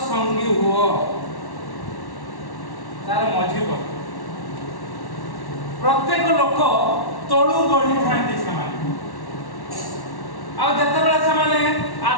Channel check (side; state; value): right; late; 1.1 ms